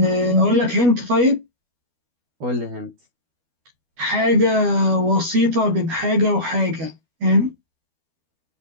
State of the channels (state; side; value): late; left; 12 ms